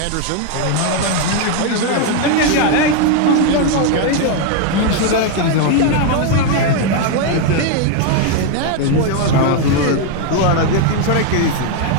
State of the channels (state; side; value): different; both; correlation 0.01